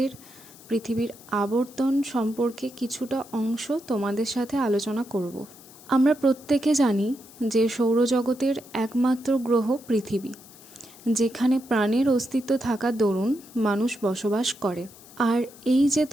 পৃথিবীর আবর্তন সম্পর্কে কিছুটা অংশ তোমাদের সাথে আলোচনা করব। আমরা প্রত্যেকে জানি যে সৌরজগতের একমাত্র গ্রহ পৃথিবী, যেখানে প্রাণের অস্তিত্ব থাকার দরুন মানুষ বসবাস করে। আর এই যে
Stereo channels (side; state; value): left; noise; hiss, 21 dB below the sound